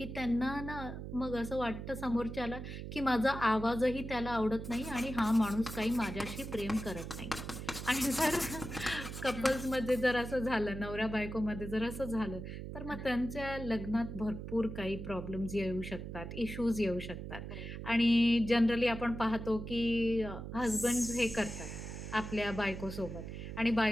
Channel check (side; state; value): right; noise; hum, 8 dB below the sound